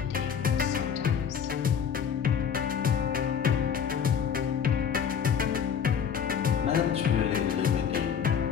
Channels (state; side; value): quieter; right; 7.5 dB